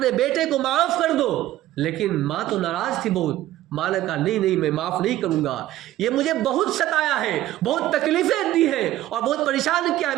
بیٹے کو معاف کر دو، لیکن ماں تو ناراض تھی بہت. ماں نے کہا نہیں میں معاف نہیں کروں گا، یہ مجھے بہت ستایا ہے، بہت تکلیفیں دی ہیں اور بہت پریشان کیا ہے،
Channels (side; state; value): left; quieter; 14.5 dB